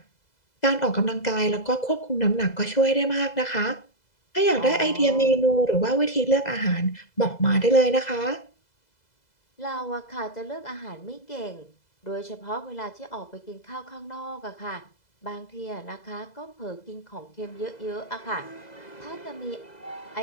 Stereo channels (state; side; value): late; right; 2.0 ms